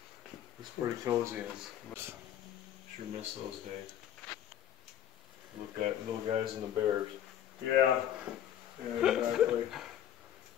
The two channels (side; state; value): right; quieter; 10.5 dB